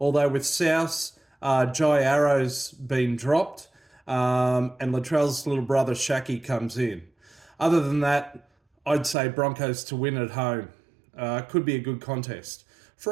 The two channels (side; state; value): left; drops out; at 9.2 s